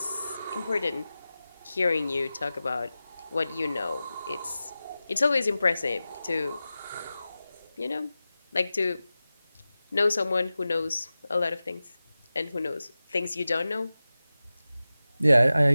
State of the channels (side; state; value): both; inverted; correlation -0.95